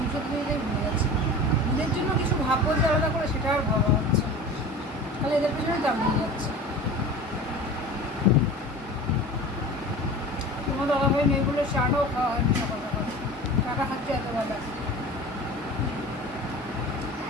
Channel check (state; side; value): normal; both; correlation 0.36